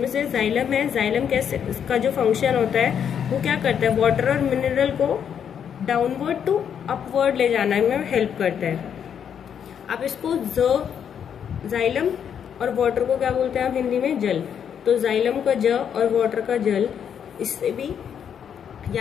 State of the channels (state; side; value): quieter; right; 8.2 dB